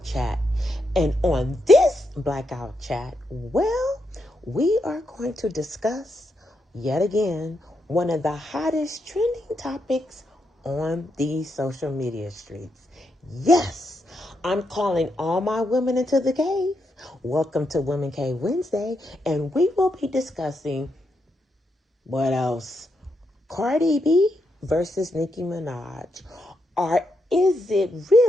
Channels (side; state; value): both; normal; correlation 0.82